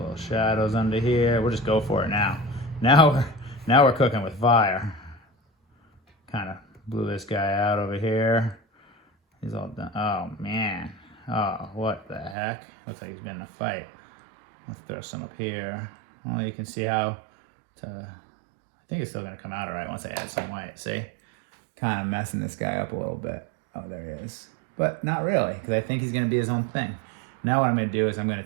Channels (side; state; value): left; drops out; at 12.4 s